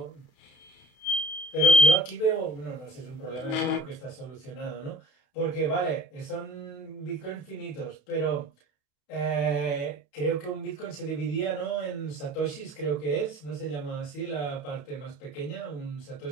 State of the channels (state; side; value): late; right; 32 ms